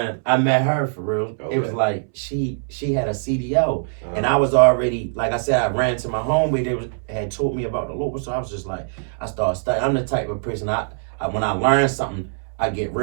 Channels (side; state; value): left; silent; 64 dB below the other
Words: I met her for real. Okay. It was like she had a CDL, and I was already, like I said, I ran to my home where they had told me about the local. So I was just like, I started studying. I'm the type of person I when I learn something, I get